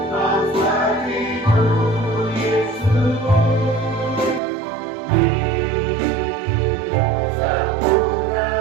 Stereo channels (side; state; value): left; drops out; at 4.4 s